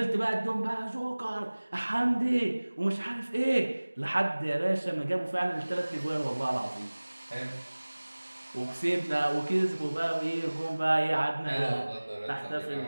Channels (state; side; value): inverted; both; correlation -1.00